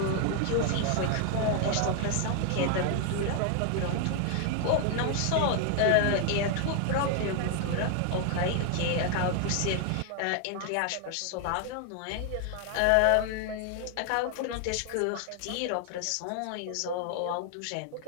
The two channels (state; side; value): different; both; correlation 0.00